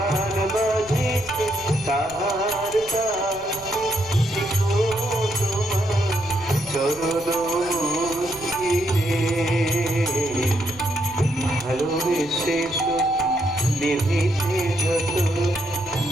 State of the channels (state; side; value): noise; left; rumble, 20 dB below the sound